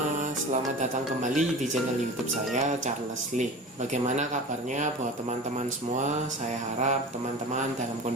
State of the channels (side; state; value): both; normal; correlation 0.34